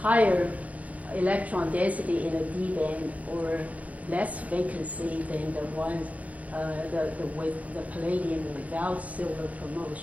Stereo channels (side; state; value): left; late; 0.070 ms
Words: higher electron density in the D band or less vacancy than the ones with the palladium without silver